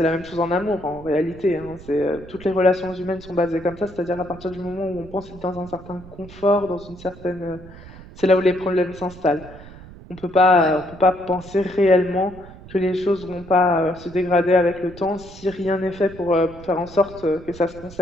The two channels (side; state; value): right; noise; rumble, 18 dB below the sound